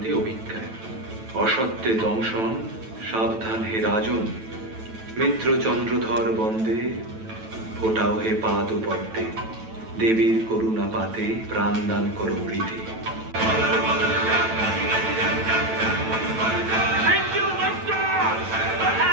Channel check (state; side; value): late; left; 9.1 ms